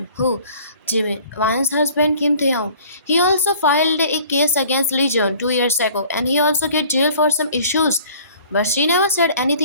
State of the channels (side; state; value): both; inverted; correlation -0.51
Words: who? Jimmy, Ryan's husband Kim Taeyong. He also filed a case against Legion 2 years ago and he also get jailed for some issues. But she never said